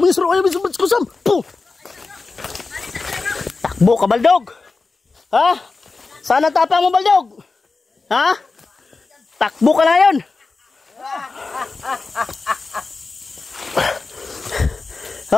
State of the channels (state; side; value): quieter; right; 4.0 dB